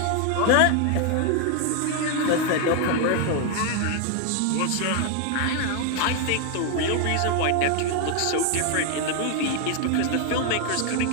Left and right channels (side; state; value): both; different; correlation 0.01